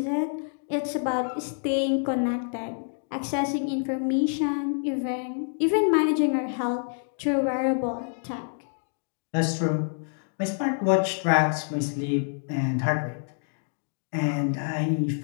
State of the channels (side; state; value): right; silent; digital silence